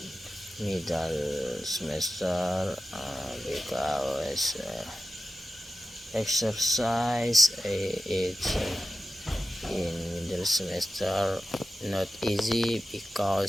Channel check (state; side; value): normal; both; correlation 0.93